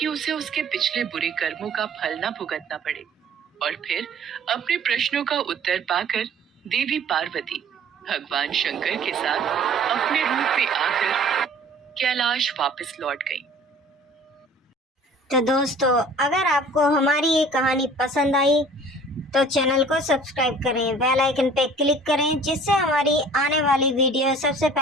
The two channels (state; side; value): normal; both; correlation 0.49